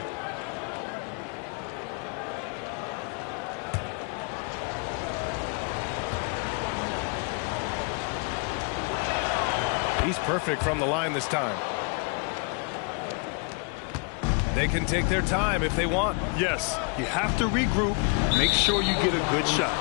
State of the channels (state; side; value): quieter; right; 36.0 dB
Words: He's perfect from the line this time. They can take their time if they want. Yes, you have to regroup. Make sure you get a good shot.